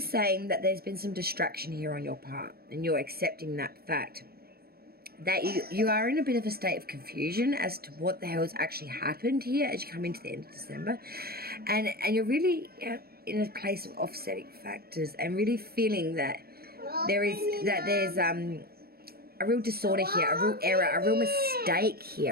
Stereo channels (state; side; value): late; left; 0.45 ms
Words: saying that there's been some distraction here on your part, and you're accepting that fact that you are in a bit of a state of confusion as to what the hell has actually happened here as you come into the end of December, and you're really in a place of offsetting factors, and really feeling that there's a real disorder here, a real error, a real mistake